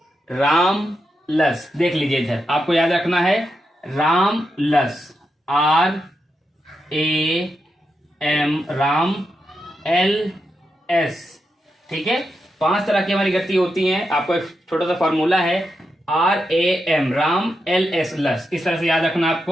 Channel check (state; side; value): normal; both; correlation 0.86